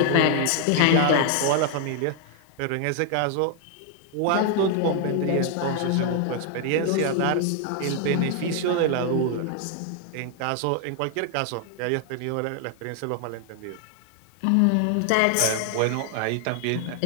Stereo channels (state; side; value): different; both; correlation 0.00